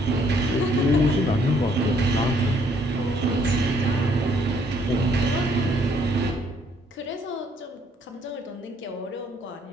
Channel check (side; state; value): both; normal; correlation 0.66